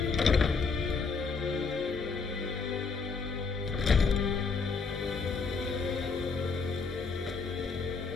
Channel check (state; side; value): quieter; right; 4.9 dB